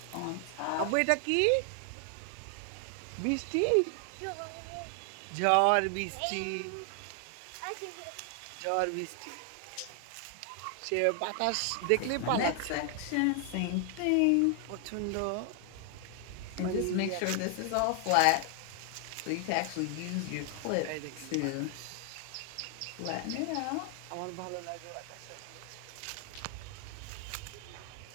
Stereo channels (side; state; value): both; different; correlation 0.00